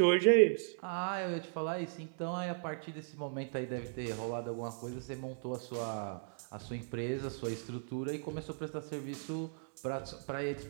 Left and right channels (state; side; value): silent; left; digital silence